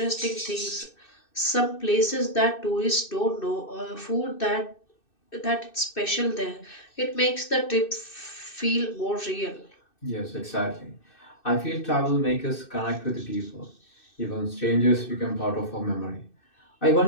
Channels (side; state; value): right; late; 2.6 ms